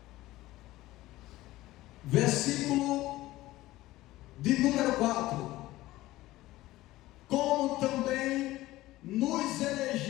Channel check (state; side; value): quieter; right; 17.1 dB